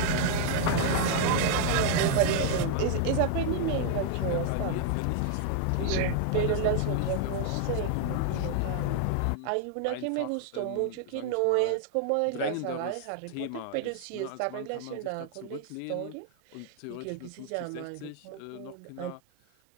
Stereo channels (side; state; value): both; different; correlation 0.00